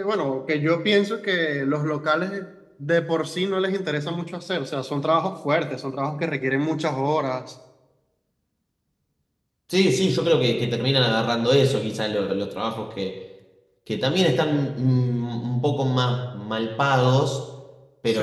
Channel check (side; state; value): both; identical; correlation 1.00